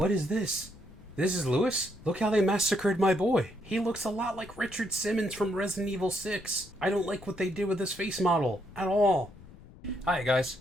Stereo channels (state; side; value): noise; left; rumble, 20 dB below the sound